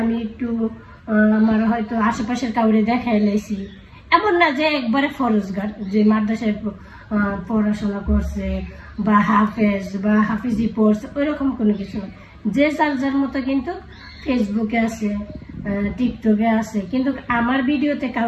একটু আমার হয়তো আশেপাশের কাউরে দেখাই লাইছি। এমন না যে একবারে ফরজগার যে মাদ্রাসায় পড়াশোনা করছে বা হাফেজ বা হাফিজি পড়ছে, ওইরকম কোনো কিছু না। যে যার যার মতো কিন্তু ফেসবুকে আছে, টিকটকে আছে, কিন্তু আমার ভিডিওতে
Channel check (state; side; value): identical; both; correlation 1.00